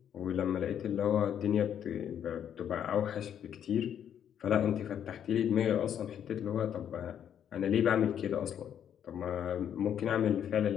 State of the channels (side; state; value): right; quieter; 9.2 dB